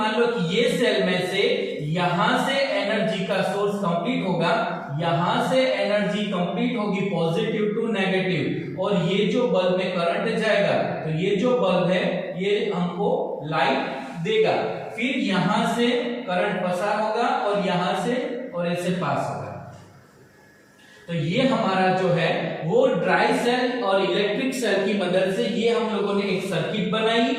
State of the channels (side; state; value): both; identical; correlation 1.00